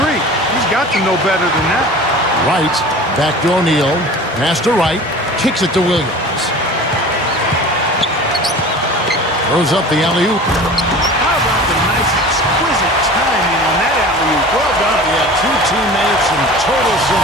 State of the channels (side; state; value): both; normal; correlation 0.39